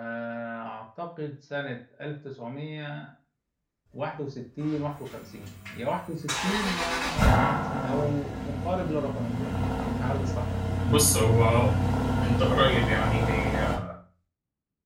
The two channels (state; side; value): identical; both; correlation 1.00